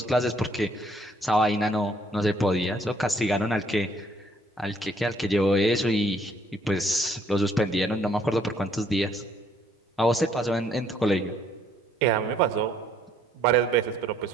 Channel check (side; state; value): both; normal; correlation 0.65